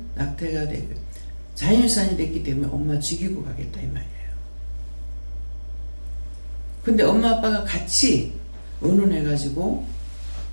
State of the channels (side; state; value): both; inverted; correlation -1.00